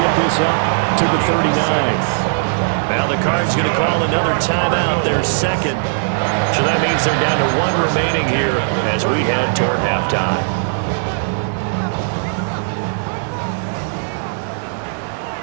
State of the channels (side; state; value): left; silent; 65 dB below the other